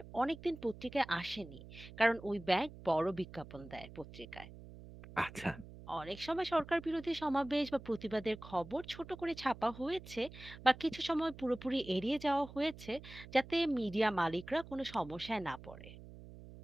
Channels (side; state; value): right; noise; hum, 16 dB below the sound